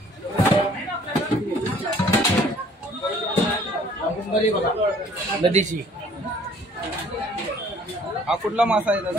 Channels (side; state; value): both; normal; correlation 0.56